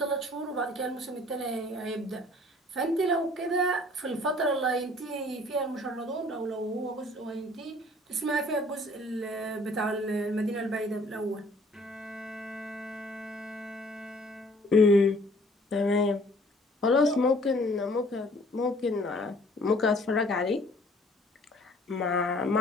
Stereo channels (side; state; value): both; normal; correlation 0.56